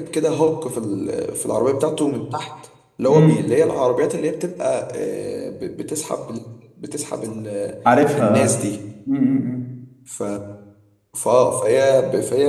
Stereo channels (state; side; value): identical; both; correlation 1.00